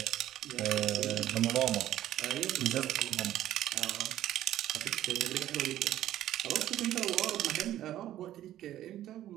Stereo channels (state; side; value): quieter; left; 12.9 dB